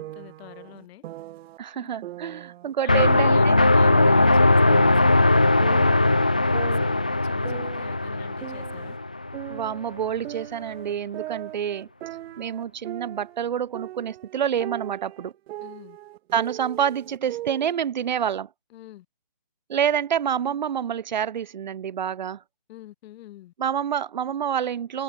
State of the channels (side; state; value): both; inverted; correlation -0.62